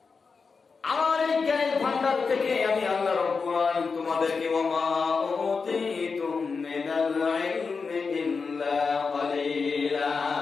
আমার এই জ্ঞানের ভান্ডার থেকে আমি আল্লাহ রাব্বুল আলামিন তোমাদেরকে ওয়ামা উতীতুম মিনাল ইলমি ইল্লা ক্বালিলা,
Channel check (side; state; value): right; quieter; 4.9 dB